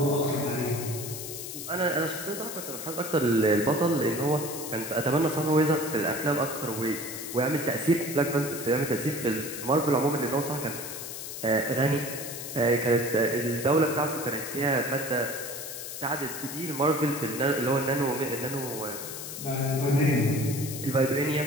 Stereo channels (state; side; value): noise; left; hiss, 8 dB below the sound